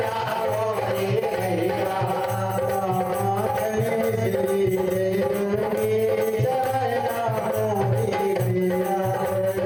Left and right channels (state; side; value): identical; both; correlation 1.00